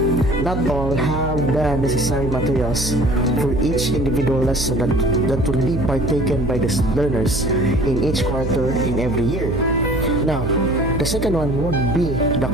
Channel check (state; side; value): noise; right; hum, 4 dB below the sound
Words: not all have the necessary materials for each individual lesson that will be partaken by the learners in each quarter in every year. Now, the second one would be the